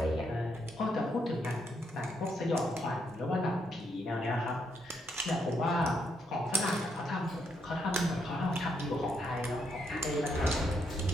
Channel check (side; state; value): both; normal; correlation 0.77